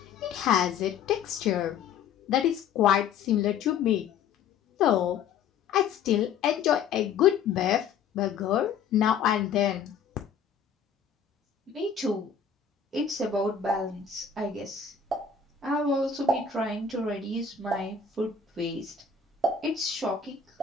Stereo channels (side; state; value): right; quieter; 6.7 dB